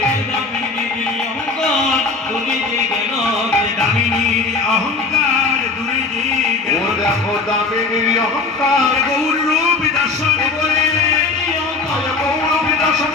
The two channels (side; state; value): right; quieter; 4.0 dB